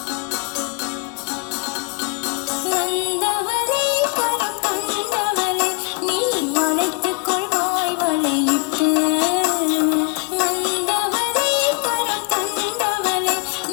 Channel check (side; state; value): right; quieter; 29.9 dB